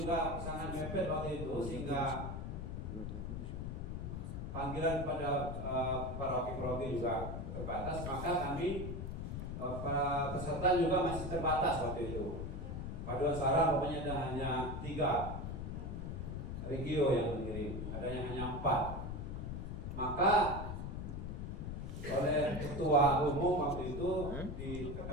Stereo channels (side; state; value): left; noise; rumble, 5 dB below the sound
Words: sangat mepet waktu itu, sehingga panggilan pada paroki-paroki juga terbatas, maka kami para peserta juga masih terbatas waktu itu. Paduan suara pokoknya hanya 3 regio yang mengirim, ada yang hanya 4. Maka oleh ketua umum waktu itu